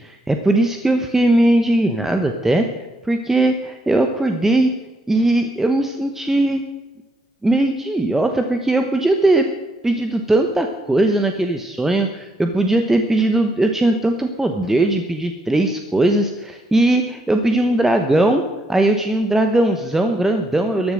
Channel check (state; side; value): normal; both; correlation 0.76